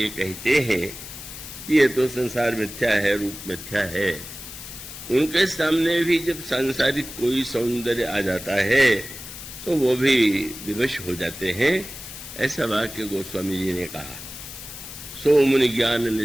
कहते हैं ये तो संसार मिथ्या है, रूप मिथ्या है, उनके सामने भी जब सांसारिक कोई सौंदर्य आ जाता है तो वो भी विवश हो जाते हैं। ऐसा वाक्य गोस्वामी जी ने कहा। सो मुनि ज्ञान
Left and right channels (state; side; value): noise; left; hiss, 12 dB below the sound